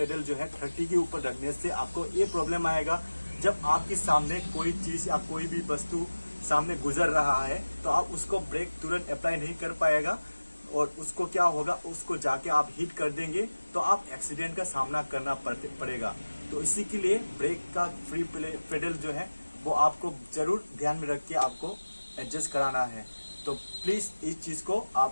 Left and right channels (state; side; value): inverted; both; correlation -1.00